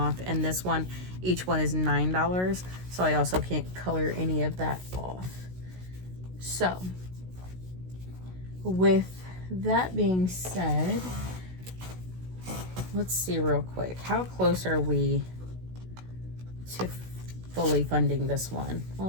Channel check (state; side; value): late; left; 16 ms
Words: And this one, each one is $9, so I also can't color any of that off. So with that being said, let's see real quick, how close are we to fully funding this one.